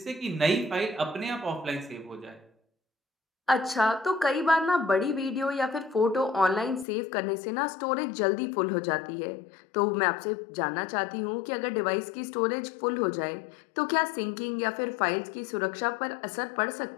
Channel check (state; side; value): drops out; right; at 6.9 s